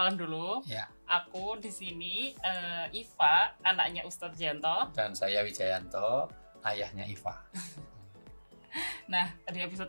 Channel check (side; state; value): both; inverted; correlation -1.00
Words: dulu. Ya. Aku di sini Iva, anaknya Ustadz Janto. Dan saya Wijayanto, ayahnya Iva. Nah, di episode